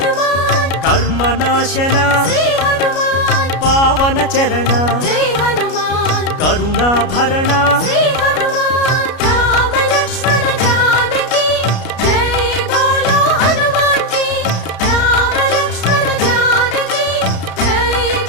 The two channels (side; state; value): right; late; 33 ms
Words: కర్మనాశన పావన చరణ కరుణాభరణ